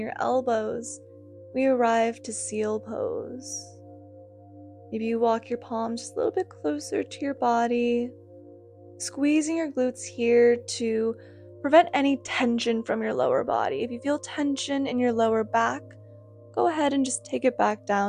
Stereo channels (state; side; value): identical; both; correlation 1.00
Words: elbows. We arrive to seal pose. Maybe you walk your palms just a little bit closer to your body, squeezing your glutes here to Prevent any tension from your lower body. If you feel tension in your lower back, go ahead and just take it back